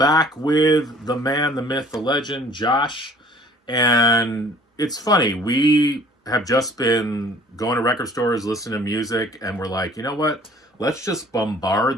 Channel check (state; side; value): normal; both; correlation 0.53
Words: with the man, the myth, the legend, Josh. And it's funny, we have just been going to record stores, listening to music, and we're like, you know what? Let's just